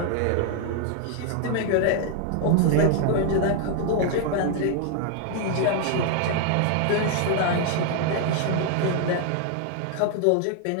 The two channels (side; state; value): both; different; correlation 0.00